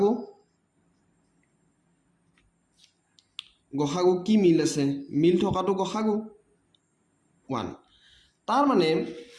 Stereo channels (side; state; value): both; identical; correlation 1.00